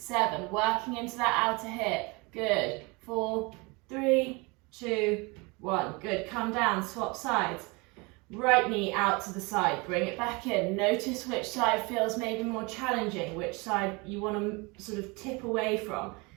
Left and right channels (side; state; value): left; quieter; 27.3 dB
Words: working into that outer hip. Good. 4, 3, 2, 1. Good. Come down, swap sides. Right knee out to the side. Bring it back in. Notice which side feels maybe more challenging, which side you want to sort of tip away from.